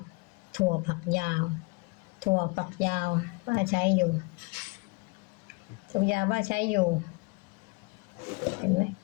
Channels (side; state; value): right; quieter; 27.3 dB